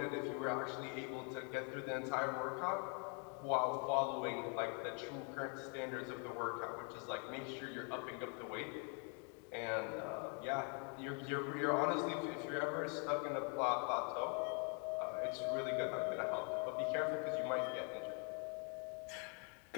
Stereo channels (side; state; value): right; quieter; 38.9 dB